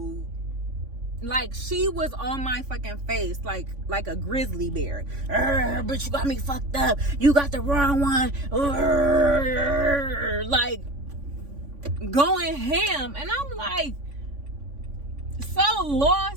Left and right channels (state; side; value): late; left; 3.5 ms